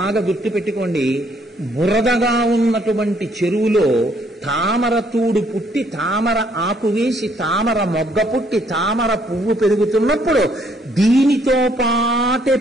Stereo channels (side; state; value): both; normal; correlation 0.67